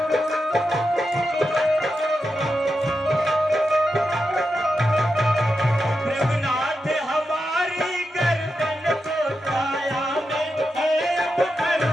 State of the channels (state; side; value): normal; both; correlation 0.88